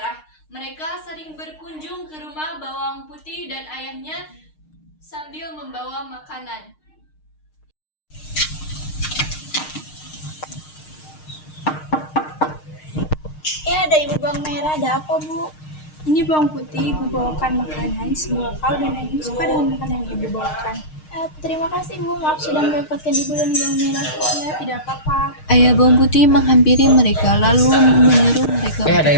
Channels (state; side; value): late; right; 6.5 ms